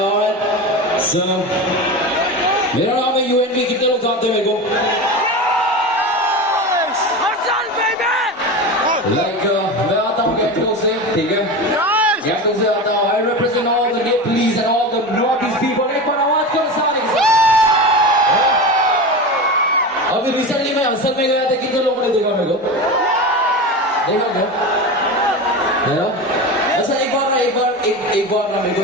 So, मेरा नाम है यूएनबी, कितने लोग जानते हैं मेरे को? मैं आता हूँ गैंगटॉक से, ठीक है? गैंगटॉक से आता हूँ। I represent all the Nepalese and all the Northeast people. एक बार आवाज करो सारे। अभी रिसेंटली मैं असल में गया था, कितने लोगों ने देखा मेरे को? देखा क्या? अच्छा एक बार ना मेरे को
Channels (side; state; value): both; normal; correlation 0.25